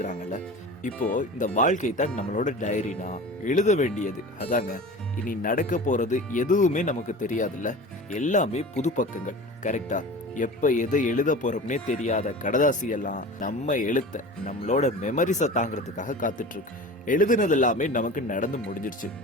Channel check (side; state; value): both; normal; correlation 0.36